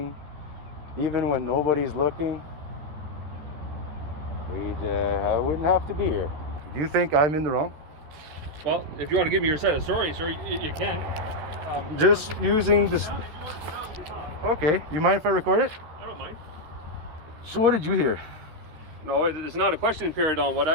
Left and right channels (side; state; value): left; late; 13 ms